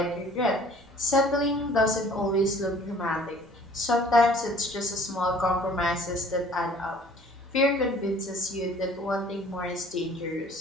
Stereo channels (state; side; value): normal; both; correlation 0.53